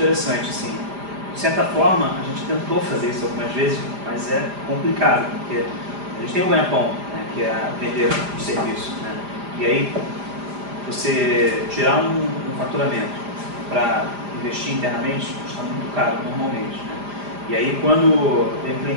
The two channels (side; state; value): left; late; 5.0 ms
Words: assim. De certa forma, a gente tentou fazer isso algumas vezes, mas é complicado, porque a gente tem um ganha-pão, né, que é vender um serviço, né? E aí, você tirar um faturamento para investir internamente custa muito caro, normalmente, né? E aí, quando tem um